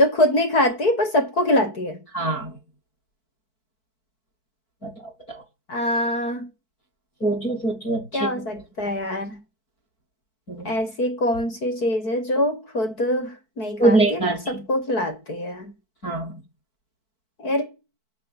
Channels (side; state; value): right; late; 4.6 ms